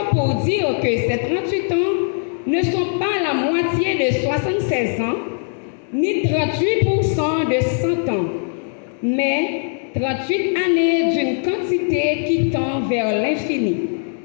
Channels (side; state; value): right; silent; 57 dB below the other